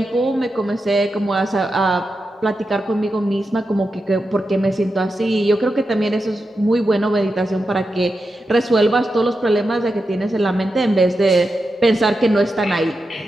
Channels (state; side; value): normal; both; correlation 0.89